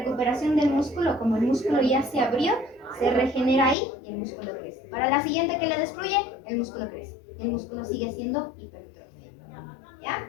del músculo, como el músculo ya se abrió, se regenera ahí y el músculo crece. Para la siguiente que le destruye, el músculo crece. Y el músculo sigue siendo hipertrofia.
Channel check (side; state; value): right; drops out; at 3.8 s